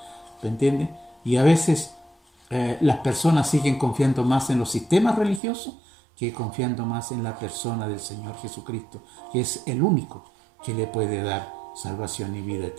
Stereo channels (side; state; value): left; drops out; at 5.4 s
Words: ¿Me entiendes? Y a veces las personas siguen confiando más en los sistemas religiosos que confiando más en la persona del Señor Jesucristo, que es el único que le puede dar salvación y vida